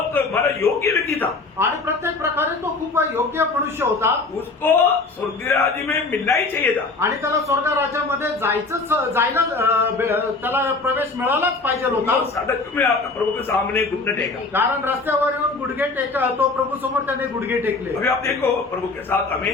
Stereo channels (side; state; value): right; quieter; 3.7 dB